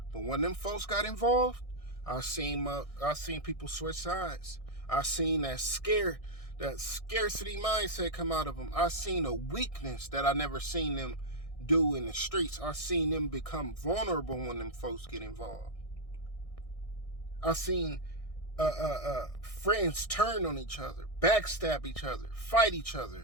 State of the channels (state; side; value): late; right; 1.6 ms